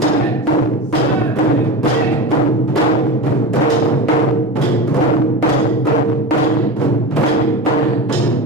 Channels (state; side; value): normal; both; correlation 0.25